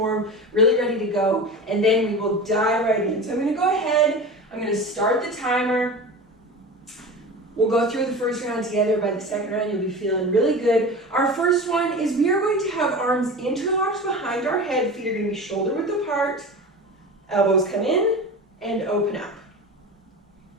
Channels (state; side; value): normal; both; correlation 0.31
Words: really ready to go, and then we will dive right in. So I'm going to go ahead, I'm going to start the timer. We'll go through the first round together. By the second round, you'll be feeling really good. Our first one is we are going to have arms interlocked behind our head. Feet are going to be shoulder width apart. Elbows come in and open up.